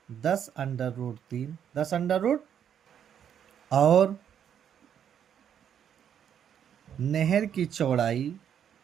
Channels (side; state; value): left; quieter; 8.9 dB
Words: 10 और नहर की चौड़ाई